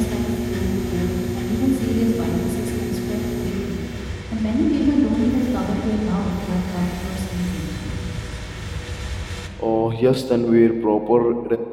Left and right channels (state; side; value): identical; both; correlation 1.00